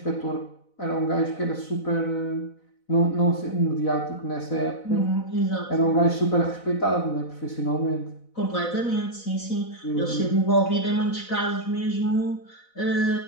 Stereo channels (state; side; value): late; right; 4.0 ms